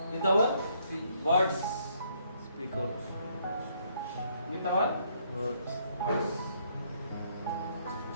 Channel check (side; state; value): both; inverted; correlation -0.69